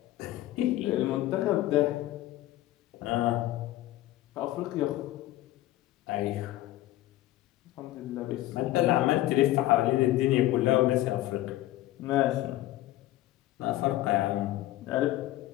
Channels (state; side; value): quieter; right; 15.5 dB